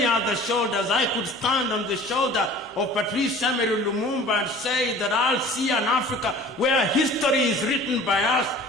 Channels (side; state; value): both; normal; correlation 0.45